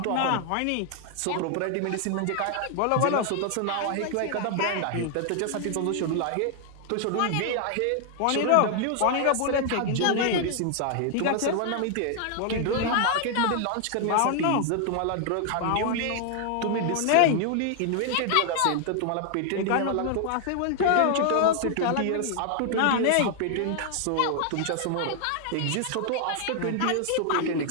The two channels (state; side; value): different; both; correlation 0.00